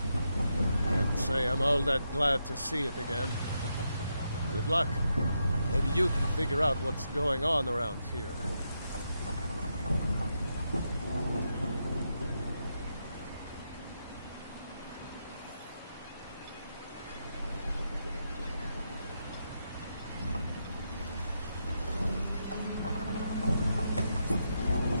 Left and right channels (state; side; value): inverted; both; correlation -0.83